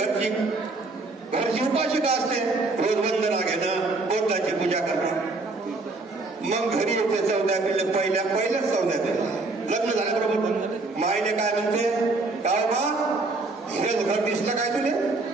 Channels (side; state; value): left; quieter; 3.4 dB